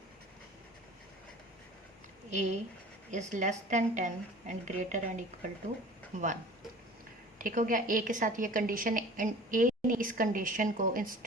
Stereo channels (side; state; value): both; normal; correlation 0.43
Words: a is less than 10 and greater and equal to 1। ठीक हो गया। ए के साथ ये कंडीशन एंड ए ने इस कंडीशन को इन